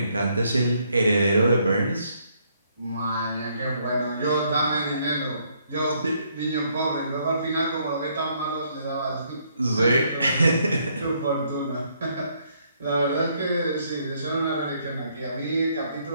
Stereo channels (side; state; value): both; inverted; correlation -0.70